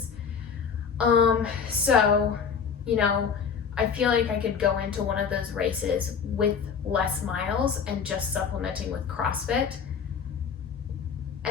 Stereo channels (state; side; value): quieter; right; 6.5 dB